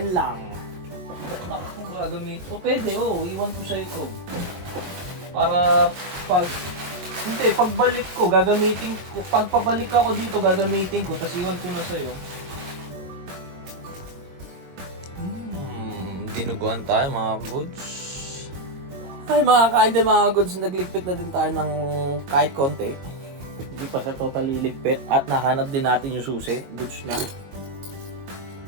lang. Gagamit. O pwede, iwan ko siya ito. Para pagbalik ko, gagamitin ko. Pagpabalik ako dito, gagamitin ko. Tapos iwan ko na sa'yo. Dinuguan tayo mga goods. Ay mga kain din mga goods, nagligpit na din tayo ng kahit konti. Hindi pa siya totally ligpit. At nahanap din natin yung susi. Goods na.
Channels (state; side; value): late; left; 22 ms